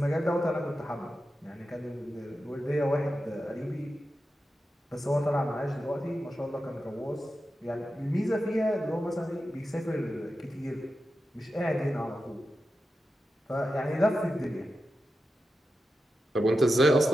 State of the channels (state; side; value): normal; both; correlation 0.91